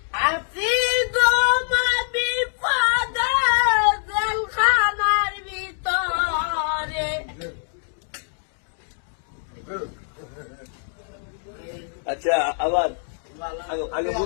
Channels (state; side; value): silent; right; digital silence